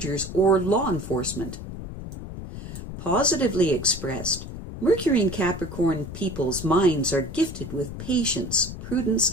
or law enforcement. Positively expressed, Mercury in Capricorn people's minds are gifted with patience, prudence,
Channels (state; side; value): noise; left; rumble, 10 dB below the sound